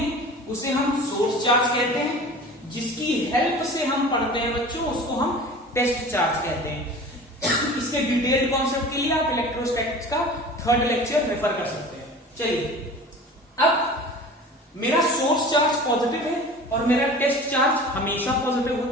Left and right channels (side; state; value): both; normal; correlation 0.39